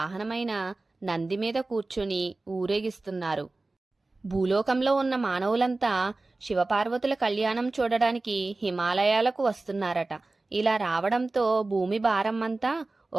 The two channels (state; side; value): quieter; left; 3.2 dB